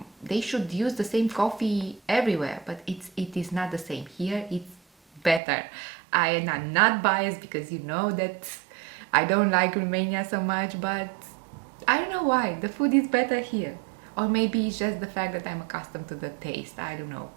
They should use the same coffee everywhere, but it is not the same. Here, it's better. I am not biased because you know that I don't like Romania so much, but I don't know why. The food is better here. Or maybe it's just the fact that I'm accustomed to the taste. I don't know.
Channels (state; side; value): drops out; left; at 5.4 s